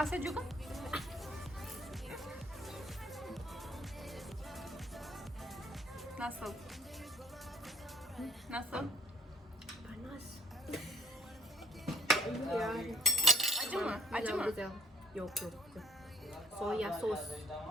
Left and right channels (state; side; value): normal; both; correlation 0.61